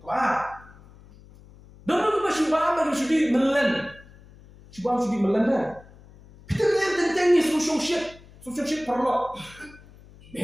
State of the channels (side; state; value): left; noise; hum, 23 dB below the sound